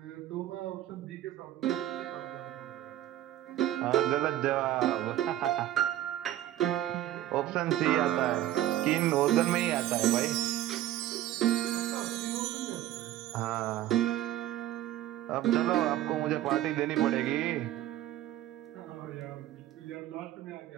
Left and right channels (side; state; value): left; quieter; 13.3 dB